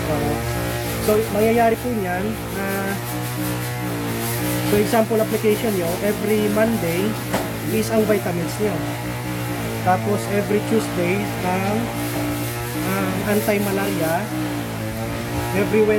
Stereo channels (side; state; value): both; identical; correlation 1.00